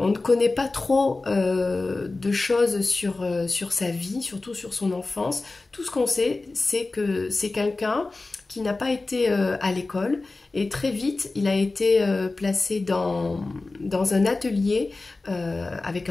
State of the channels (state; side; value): quieter; right; 3.4 dB